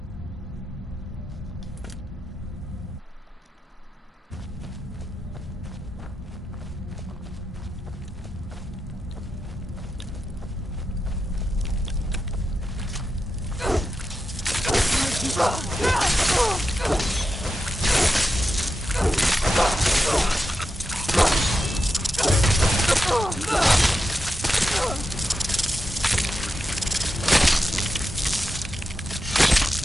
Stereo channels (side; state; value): both; normal; correlation 0.88